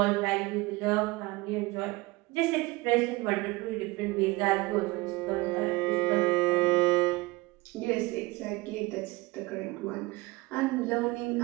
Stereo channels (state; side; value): quieter; left; 22.2 dB